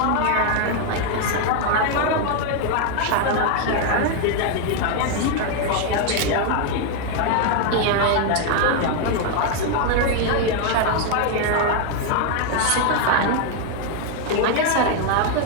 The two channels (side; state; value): both; different; correlation 0.01